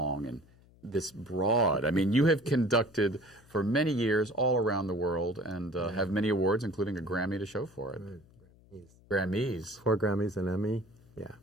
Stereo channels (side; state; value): left; noise; hum, 27 dB below the sound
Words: and this broad? I mean, you have conducted for many years all around the world and have many awards, including a Grammy to show for it. Grammys. 4 Grammys, an Emmy. Yeah.